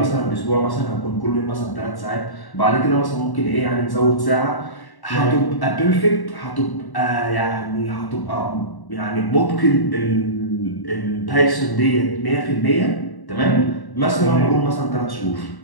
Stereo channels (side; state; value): right; late; 1.1 ms